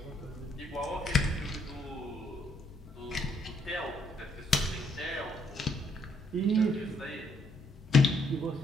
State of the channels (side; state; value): both; normal; correlation 0.70